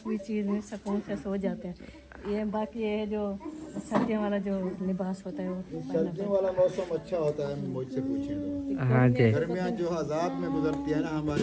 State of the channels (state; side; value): identical; both; correlation 1.00